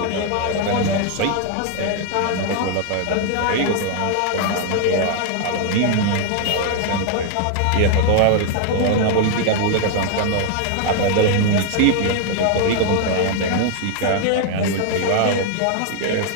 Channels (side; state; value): both; different; correlation 0.00